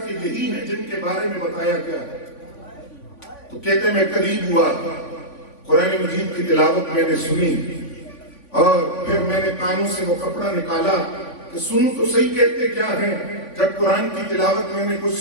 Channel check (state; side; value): late; right; 3.5 ms